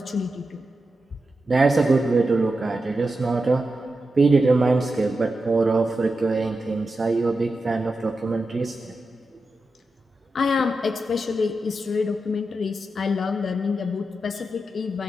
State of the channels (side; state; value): both; normal; correlation 0.89